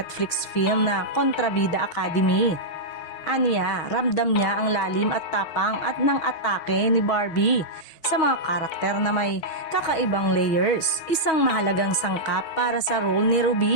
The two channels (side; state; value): right; late; 6.2 ms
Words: film na Kontrabida Academy. Aniya, ramdam niya ang lalim at tapang at ng atake ni Barbie sa mga karakter na may kakaibang layers, isang mahalagang sangkap para sa role ni